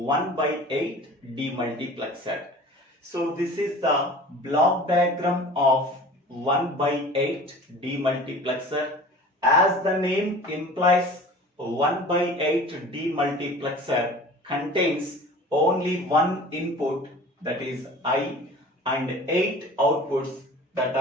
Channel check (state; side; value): normal; both; correlation 0.42